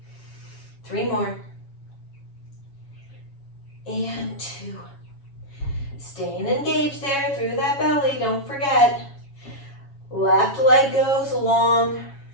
3 more. And 2. Staying engaged there through that belly. Don't forget. Left leg goes long.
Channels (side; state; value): right; late; 7.2 ms